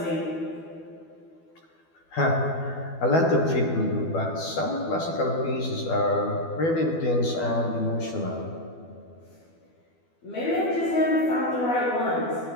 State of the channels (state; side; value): late; right; 12 ms